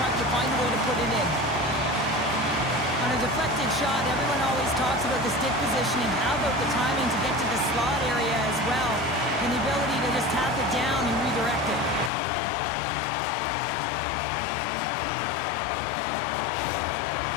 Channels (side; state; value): right; drops out; at 12.1 s